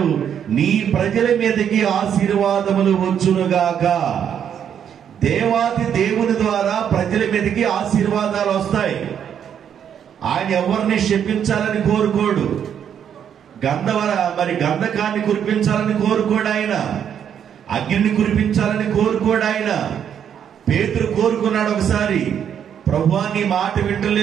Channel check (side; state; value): left; quieter; 8.7 dB